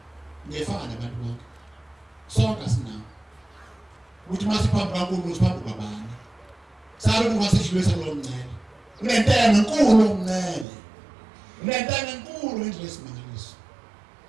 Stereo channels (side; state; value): left; drops out; at 10.7 s